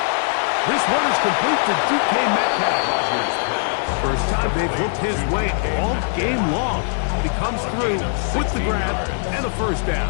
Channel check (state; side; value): silent; right; 64 dB below the other